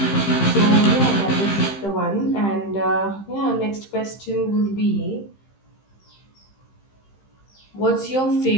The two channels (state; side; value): late; right; 15 ms